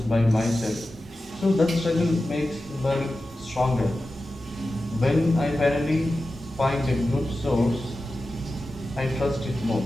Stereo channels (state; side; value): normal; both; correlation 0.93